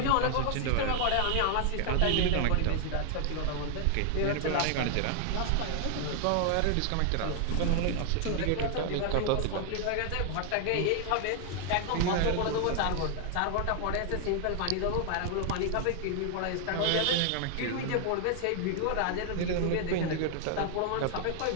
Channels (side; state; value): both; different; correlation 0.00